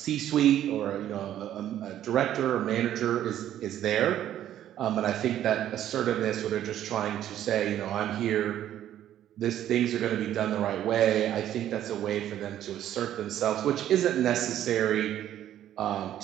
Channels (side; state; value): left; quieter; 11.6 dB